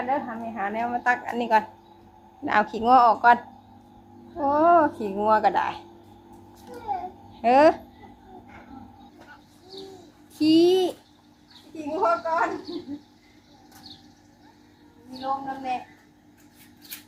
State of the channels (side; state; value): both; identical; correlation 1.00